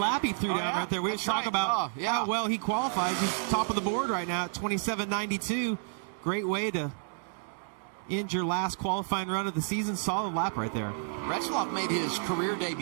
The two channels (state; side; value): silent; left; 58 dB below the other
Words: he threw down right there. We That's talk right. about how well he qualifies. He's top of the board right now at 27.92. Great way to end your last qualifying run of the season. Solid lap right there. Retzloff made his career